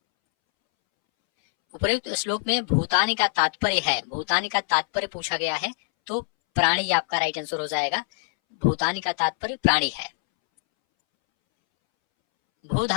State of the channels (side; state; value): right; silent; 62 dB below the other